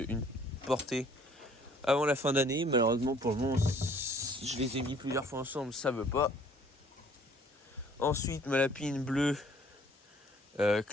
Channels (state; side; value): normal; both; correlation 0.57